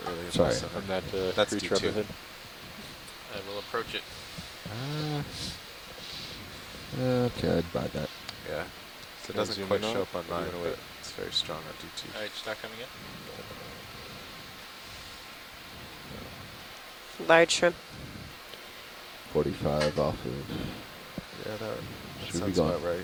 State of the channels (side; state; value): both; identical; correlation 1.00